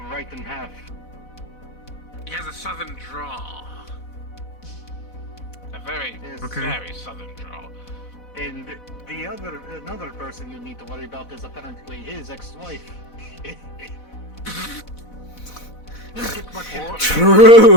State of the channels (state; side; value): late; right; 4.1 ms